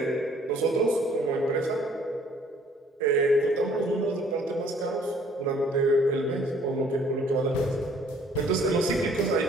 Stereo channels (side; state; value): both; normal; correlation 0.59